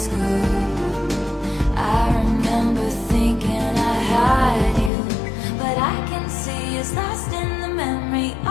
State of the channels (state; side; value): drops out; right; at 4.9 s